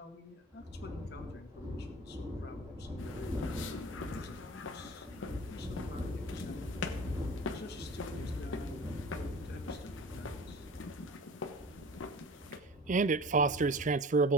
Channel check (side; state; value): both; normal; correlation 0.38